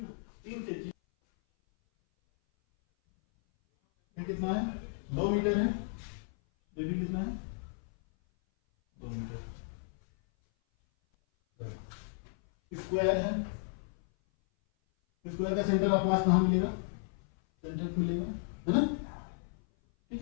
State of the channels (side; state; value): right; silent; 55 dB below the other